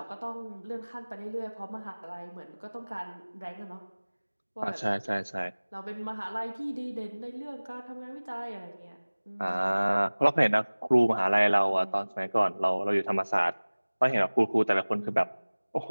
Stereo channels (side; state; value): both; inverted; correlation -1.00